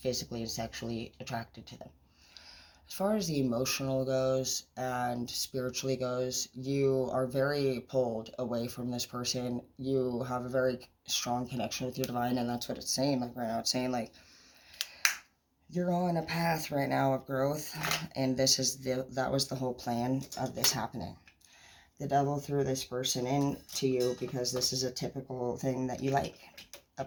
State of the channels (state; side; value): identical; both; correlation 1.00